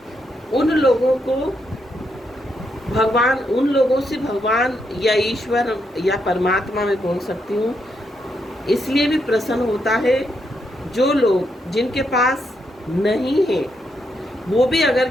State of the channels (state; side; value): normal; both; correlation 0.80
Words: उन लोगों को भगवान, उन लोगों से भगवान या ईश्वर या परमात्मा में बोल सकती हूँ, इसलिए भी प्रसन्न होता है जो लोग जिनके पास नहीं है, वो भी अगर